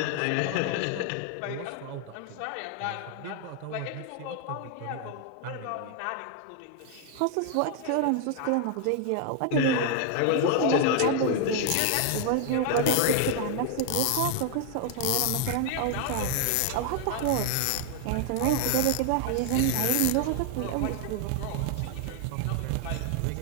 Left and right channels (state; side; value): different; both; correlation 0.00